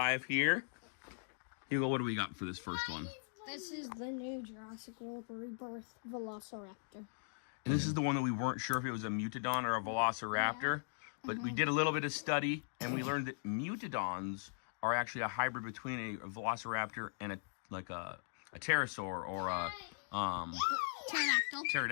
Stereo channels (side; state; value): right; silent; digital silence